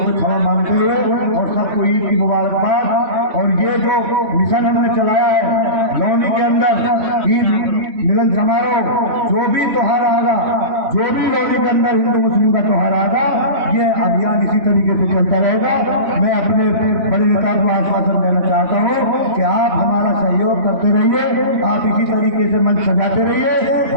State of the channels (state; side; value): late; left; 3.5 ms